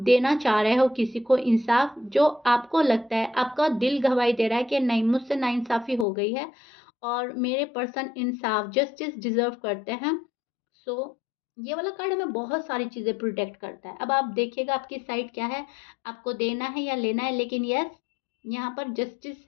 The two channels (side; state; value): right; drops out; at 6.1 s